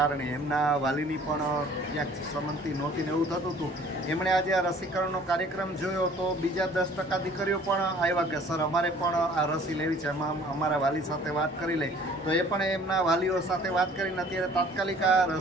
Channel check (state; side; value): normal; both; correlation 0.53